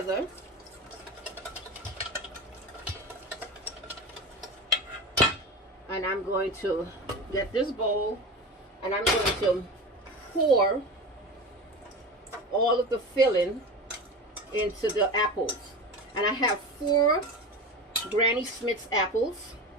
And I'm going to get this bowl and I'm going to pour all of the filling into the apples. And I have 4 Granny Smith's apples.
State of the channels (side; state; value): both; normal; correlation 0.27